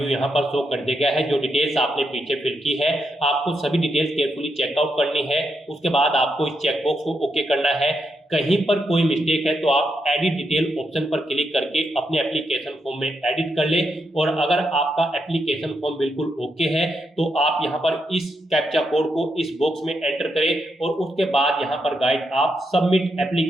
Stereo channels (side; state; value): both; normal; correlation 0.82